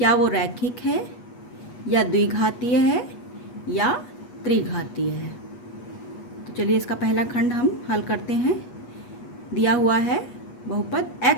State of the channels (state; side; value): late; right; 8.3 ms